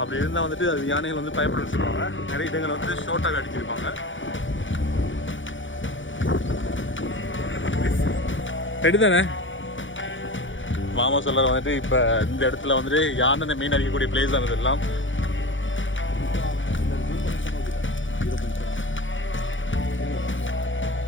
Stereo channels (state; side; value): late; right; 0.56 ms